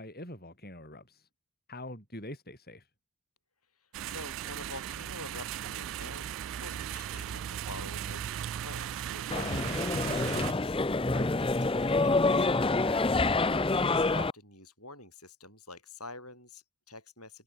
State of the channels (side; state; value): both; normal; correlation 0.44